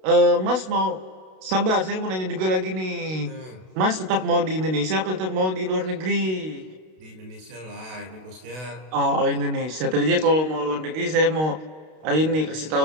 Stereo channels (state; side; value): late; left; 32 ms